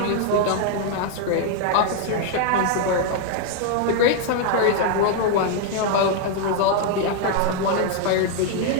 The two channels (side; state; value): both; different; correlation 0.00